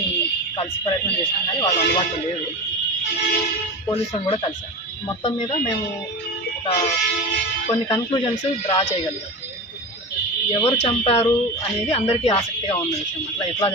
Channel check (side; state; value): both; normal; correlation 0.26